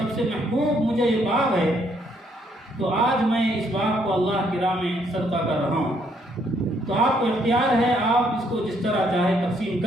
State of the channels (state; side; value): normal; both; correlation 0.70